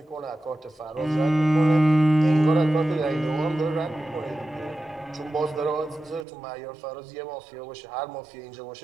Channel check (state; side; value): drops out; left; at 6.2 s